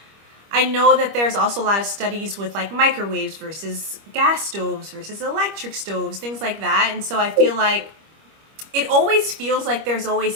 I know that there's also a lot of studies with like microwaves versus gas stoves versus electric stoves, things like that. And so I feel like it always feels like there's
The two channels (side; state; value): left; late; 25 ms